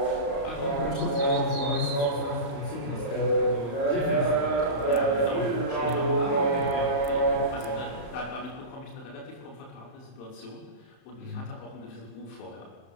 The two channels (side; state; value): right; late; 35 ms